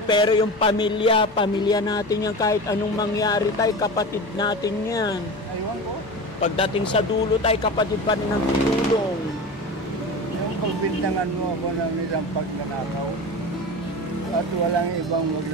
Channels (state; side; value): noise; left; hum, 24 dB below the sound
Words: pero yung pamilya natin yan, kahit anong mangyari, tay, kapatid natin yan. Aywan ko. Pagdating sa dulo, tay, kapatid pa rin ang tutulong. Yung pagbintangan mo ako ng isang pagnanakaw at walang ibang